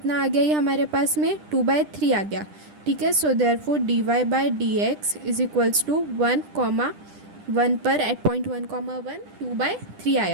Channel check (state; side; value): late; left; 10 ms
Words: आ गया ये हमारे पास में 2/3 आ गया, ठीक है। So therefore d y by d x is equals to 1,1 पर एट पॉइंट 1,1 2/3